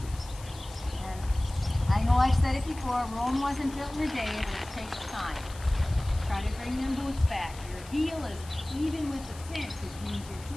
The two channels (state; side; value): noise; left; hiss, 18 dB below the sound